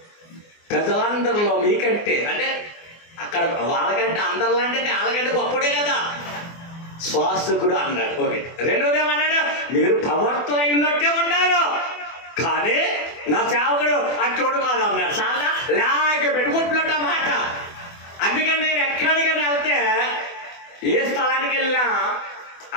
ప్రజలందరిలో మీకంటే అంటే అక్కడ వాళ్ళకంటే అందరిలో అంటే వాళ్ళకంటే గొప్పడే కదా శ్వాసకుడు అన్నాడు. ఒకటి. రెండోది ఏమన్నాడు? మీరు ప్రవర్తన ఉన్నట్టే ఉన్నారు కానీ నా సేవకుడు అట్టోడు కాదు అన్నాడు. చాలా లాగ పెట్టుకుంటున్నట్టు మాట. అందుకని నేను ఎక్కడికైనా వెళ్తే ఏ స్థలానికి వెళ్ళినా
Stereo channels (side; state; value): right; late; 24 ms